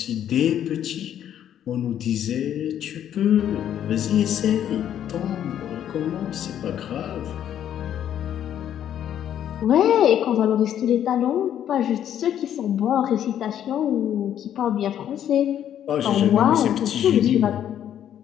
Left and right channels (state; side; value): quieter; right; 10.3 dB